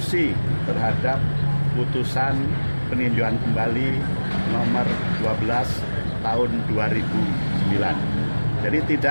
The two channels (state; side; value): inverted; both; correlation -1.00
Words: terhadap putusan peninjauan kembali nomor 12 tahun 2009. Jadi